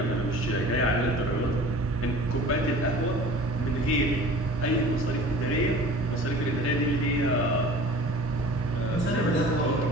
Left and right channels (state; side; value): normal; both; correlation 0.43